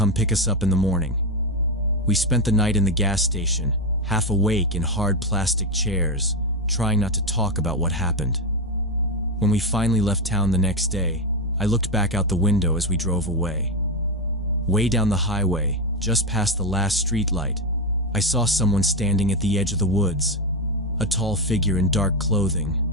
pick us up in the morning. We spent the night in the gas station, half awake in hard plastic chairs, trying not to talk about what happened. When we finally left town the next day, I looked back out the window as we drove away. Way down the highway, just past the last streetlight, I saw someone standing at the edge of the woods. A tall figure in dark clothing,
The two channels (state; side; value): normal; both; correlation 0.10